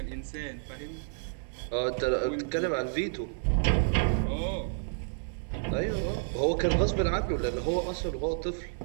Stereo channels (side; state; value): left; silent; digital silence